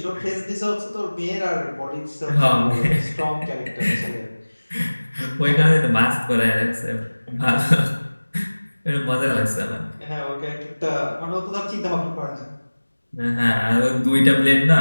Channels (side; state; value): both; inverted; correlation -1.00